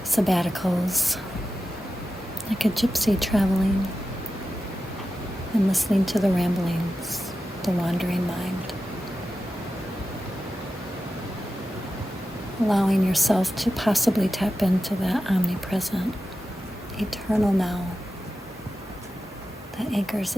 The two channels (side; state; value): both; normal; correlation 0.93